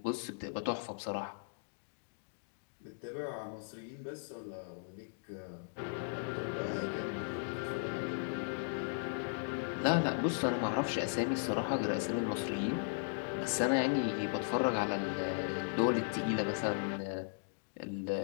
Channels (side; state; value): right; silent; digital silence